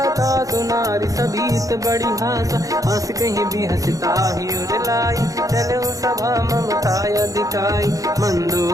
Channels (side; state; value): left; late; 0.17 ms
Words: था सुनारी सभीत बड़ी हासा हंस कहीं भी हंसता ही उड़लाई चलो सभा ममता दिखाई